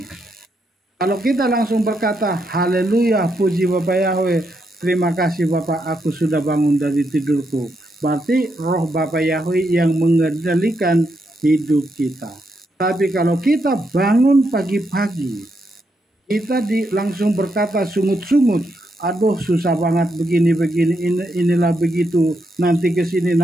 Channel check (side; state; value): both; normal; correlation 0.80